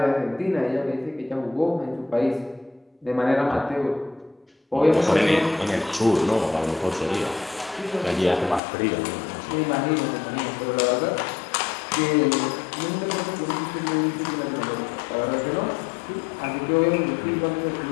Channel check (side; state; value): right; drops out; at 8.6 s